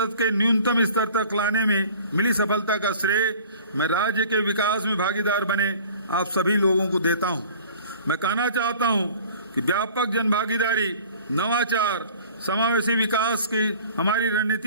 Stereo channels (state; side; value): inverted; both; correlation -0.46